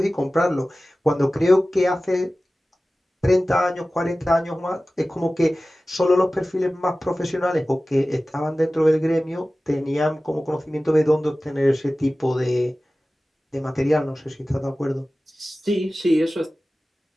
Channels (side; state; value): both; normal; correlation 0.96